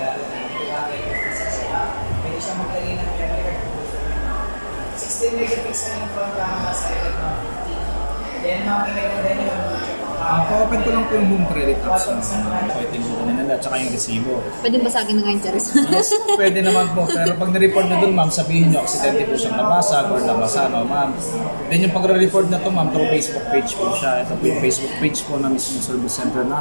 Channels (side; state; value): both; inverted; correlation -1.00